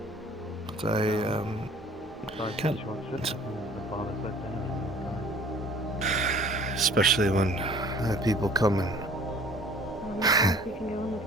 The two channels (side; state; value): both; normal; correlation 0.51